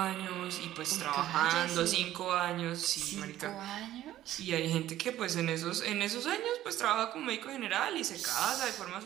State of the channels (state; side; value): quieter; left; 13.5 dB